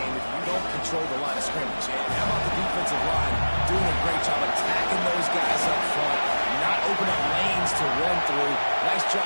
if you don't control the line of scrimmage. And how about the defensive line doing a great job attacking those guys up front, not opening up lanes to run through. Nice job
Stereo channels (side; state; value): both; inverted; correlation -1.00